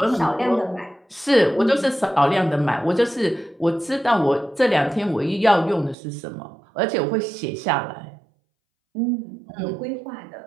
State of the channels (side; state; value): left; drops out; at 6.0 s